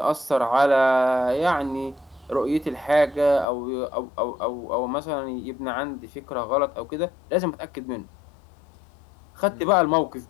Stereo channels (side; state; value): right; drops out; at 3.5 s